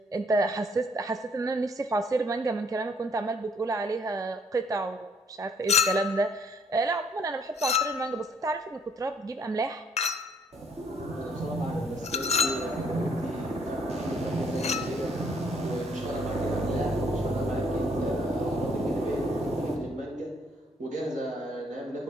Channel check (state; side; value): normal; both; correlation 0.65